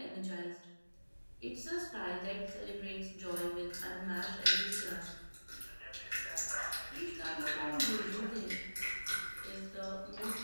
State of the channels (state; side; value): inverted; both; correlation -1.00